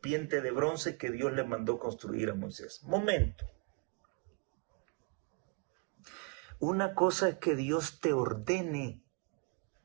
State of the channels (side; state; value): left; quieter; 34.7 dB